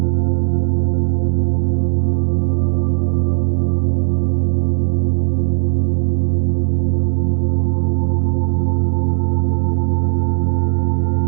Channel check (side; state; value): left; quieter; 38.5 dB